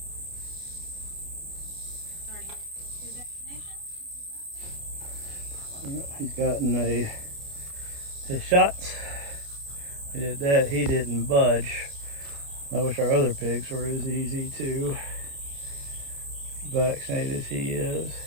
He's gotten his shots. We did that. He didn't budge. I wish our other pigs were as easy to vaccinate as he is,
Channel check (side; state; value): left; late; 29 ms